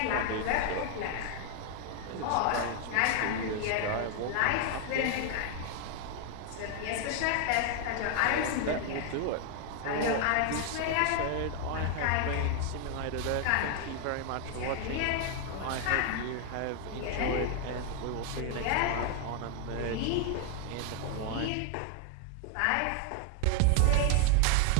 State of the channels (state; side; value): different; both; correlation 0.00